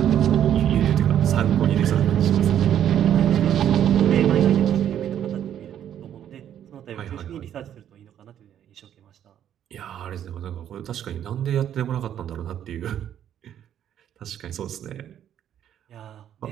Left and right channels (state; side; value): quieter; left; 10.2 dB